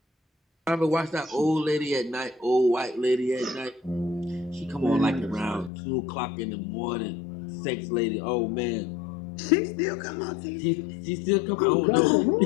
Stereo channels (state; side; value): drops out; right; at 5.7 s